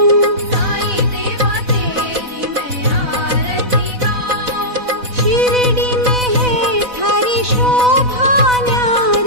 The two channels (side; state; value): left; late; 4.0 ms